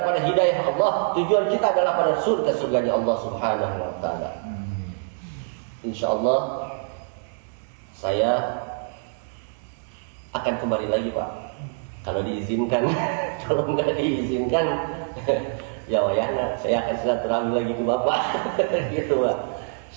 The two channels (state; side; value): silent; left; 62 dB below the other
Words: pada hidayah Allah. Tujuan kita adalah pada surga-surganya Allah subhanahu wa ta'ala. InsyaAllah saya akan kembali lagi, Pak, kalau diizinkan. Kalau nggak diizinkan ya saya akan silaturahmi lagi ke Bapak. Gitu, Pak.